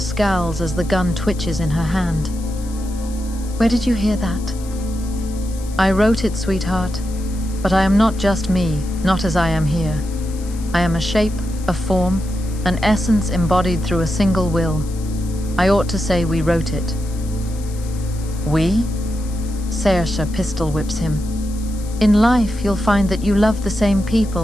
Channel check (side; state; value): left; noise; hiss, 19 dB below the sound